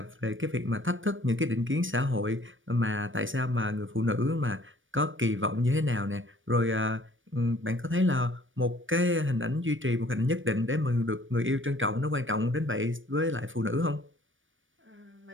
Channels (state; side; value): late; left; 0.57 ms